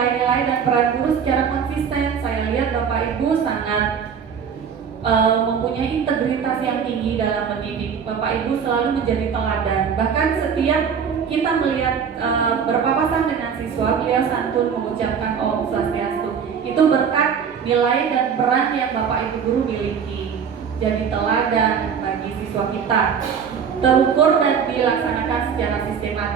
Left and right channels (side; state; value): left; quieter; 7.0 dB